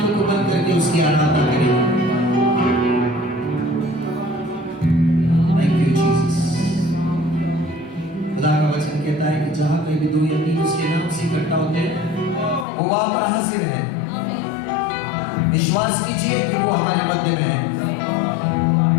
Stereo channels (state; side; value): drops out; right; at 12.7 s